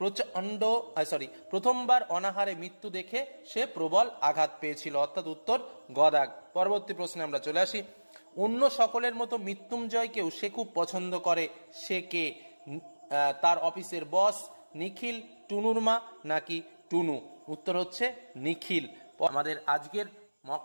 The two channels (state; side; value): inverted; both; correlation -1.00